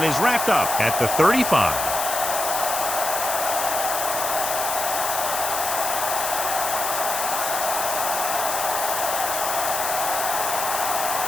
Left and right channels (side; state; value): left; noise; hiss, 2 dB below the sound